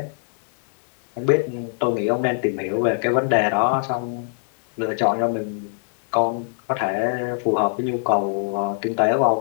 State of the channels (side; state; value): right; silent; digital silence